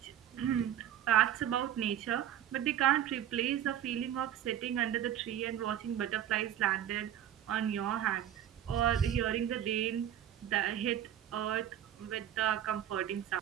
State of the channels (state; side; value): quieter; left; 10.7 dB